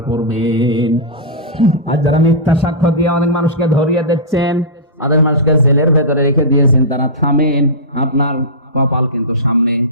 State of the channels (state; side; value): normal; both; correlation -0.16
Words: করবেন। আর যারা মিথ্যা সাক্ষ্য দিয়ে অনেক মানুষকে ধরিয়ে দিচ্ছেন, অনেক মানুষকে জেলের ভেতরে রেখে দিয়েছেন, তারা থামেন, আপনার কপাল কিন্তু সামনে